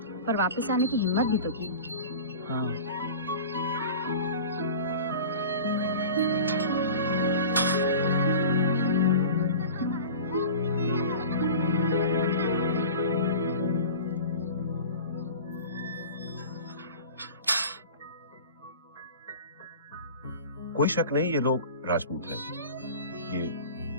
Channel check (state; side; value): inverted; both; correlation -0.36